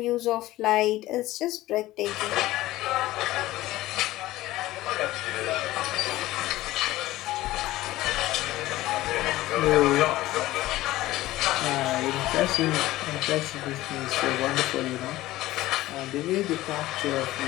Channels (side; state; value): right; quieter; 16.7 dB